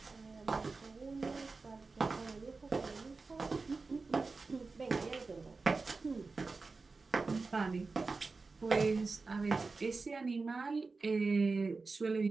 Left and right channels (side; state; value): left; quieter; 4.0 dB